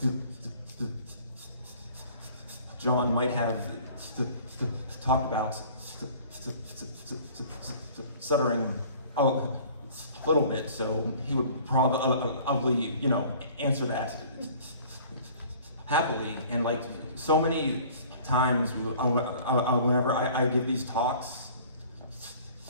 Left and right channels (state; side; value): inverted; both; correlation -0.50